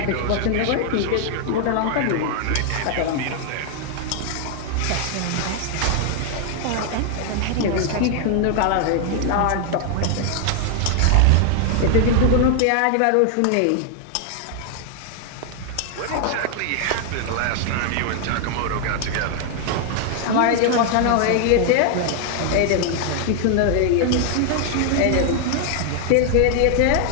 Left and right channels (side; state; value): both; different; correlation 0.00